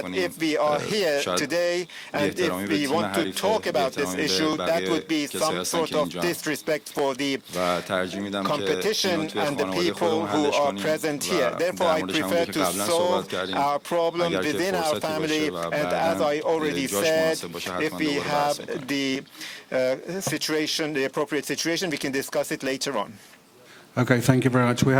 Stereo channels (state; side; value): identical; both; correlation 1.00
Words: if we are here today and if we want to talk about this issue, that would be some sort of disrespect for the competition and the people who are present here. Therefore, I prefer to solve our problem within our family, and as I already said, if we have the situation, the appropriate situation, we can discuss it later on. Okay, thank you very much. We